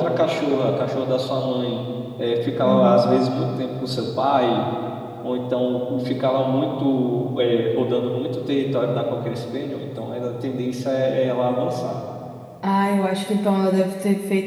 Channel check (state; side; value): identical; both; correlation 1.00